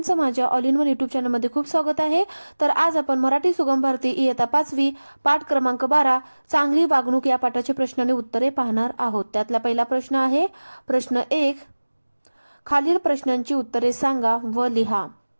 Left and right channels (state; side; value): inverted; both; correlation -1.00